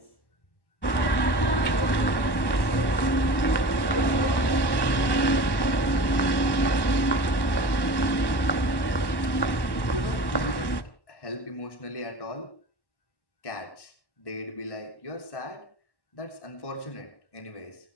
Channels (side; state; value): right; late; 1.1 ms